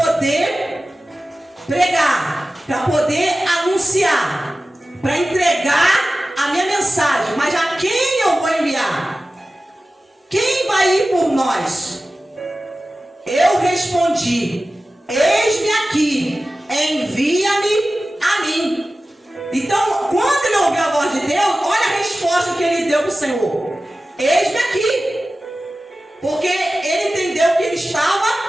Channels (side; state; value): both; normal; correlation 0.96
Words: pregar, para poder anunciar, para entregar a minha mensagem. Mas a quem eu vou enviar? Quem vai ir por nós? Eu respondi, eis-me aqui, envia-me a mim. Então, quando ele ouviu a voz de Deus, olha a resposta que ele deu para o Senhor. Eis-me aqui. Porque ele entendeu que ele estava